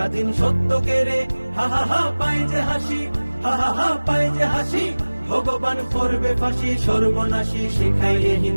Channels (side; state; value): both; inverted; correlation -1.00